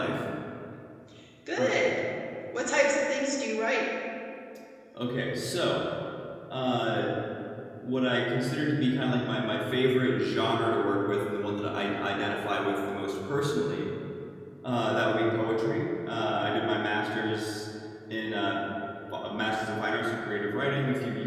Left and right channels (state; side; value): identical; both; correlation 1.00